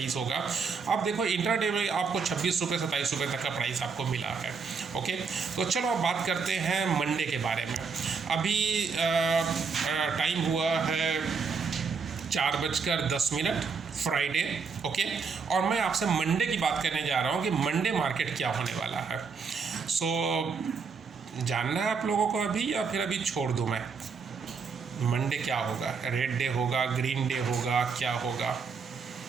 होगा। अब देखो इंट्राडे में आपको 26 रुपये 27 रुपये तक का प्राइस आपको मिला है। ओके। तो चलो अब बात करते हैं मंडे के बारे में। अभी टाइम हुआ है 4:10 फ्राइडे। ओके। और मैं आपसे मंडे की बात करने जा रहा हूँ कि मंडे मार्केट क्या होने वाला है। जानना है आप लोगों को अभी या फिर अभी छोड़ दूँ मैं? मंडे क्या होगा? रेड डे होगा, ग्रीन डे होगा, क्या होगा?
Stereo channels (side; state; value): left; quieter; 5.3 dB